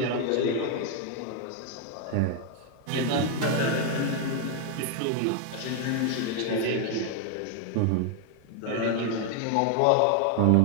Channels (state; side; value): different; both; correlation 0.01